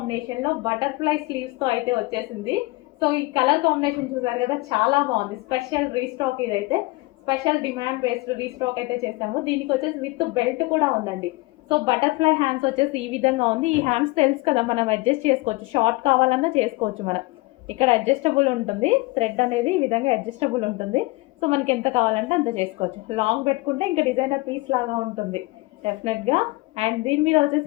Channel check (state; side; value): quieter; right; 23.0 dB